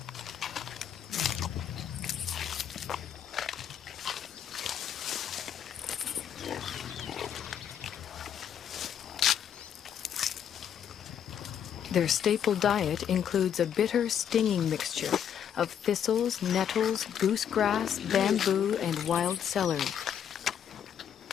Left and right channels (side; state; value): right; quieter; 8.9 dB